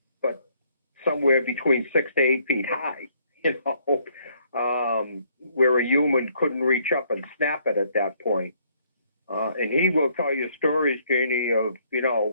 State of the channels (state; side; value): inverted; both; correlation -0.66